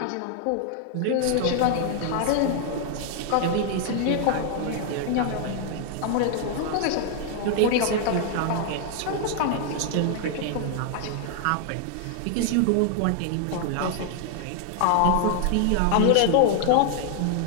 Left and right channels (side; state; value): both; different; correlation 0.00